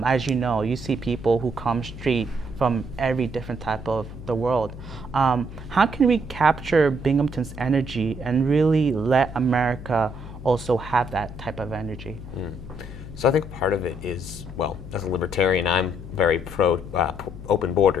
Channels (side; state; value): left; noise; hum, 12 dB below the sound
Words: as you know, you see people who come straight from every different type of the world. How can we capture Binghamton's energy and really let America also have that type of energy? So I think part of it is, well, as a libertarian, I'm very pro open